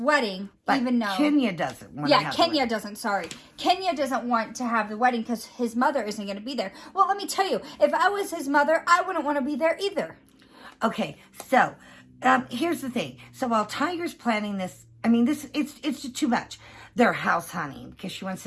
but even though Kenya doesn't want to have Kenya the wedding. doesn't, sorry. Kenya doesn't want to have the wedding because his mother isn't going to be there. Well, let me tell you, if I was his mother, I wouldn't want to be there either. Okay, so here's the thing. So while Tiger's planning this, I mean, it's just too much. They're house hunting because she wants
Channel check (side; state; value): both; identical; correlation 1.00